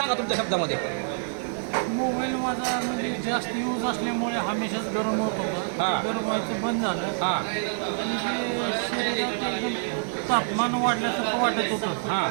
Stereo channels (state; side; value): silent; left; 60 dB below the other